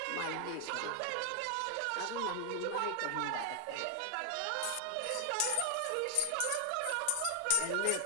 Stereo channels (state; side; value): different; both; correlation 0.00